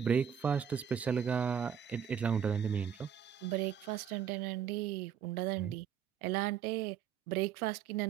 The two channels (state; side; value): quieter; left; 8.3 dB